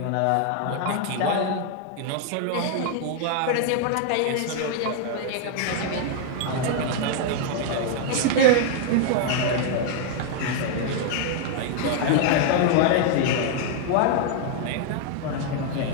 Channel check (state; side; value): different; both; correlation 0.00